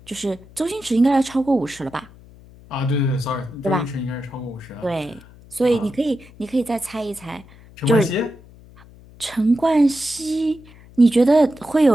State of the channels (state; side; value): noise; left; hum, 23 dB below the sound